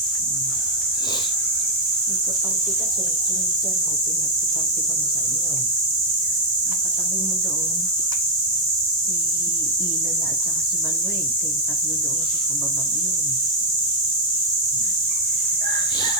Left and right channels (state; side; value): normal; both; correlation 0.02